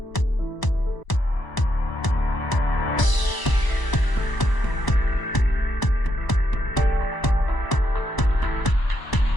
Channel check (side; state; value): right; late; 1.0 ms